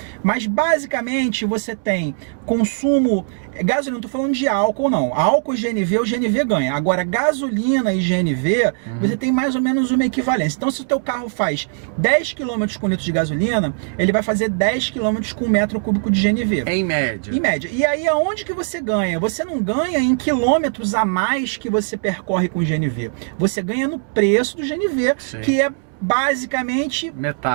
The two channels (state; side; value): silent; left; digital silence